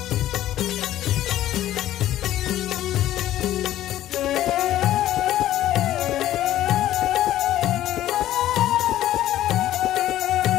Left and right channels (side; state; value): right; quieter; 13.3 dB